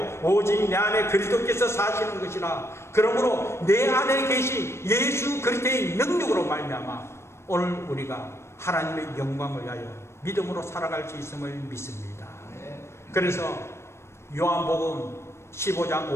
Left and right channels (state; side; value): late; right; 0.13 ms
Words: 오직 내 안에 그리스도께서 사시는 것이라. 그러므로 내 안에 계신 예수 그리스도의 능력으로 말미암아 오늘 우리가 하나님의 영광을 위하여 믿음으로 살아갈 수 있음을 믿습니다. 그래서 요한복음 15장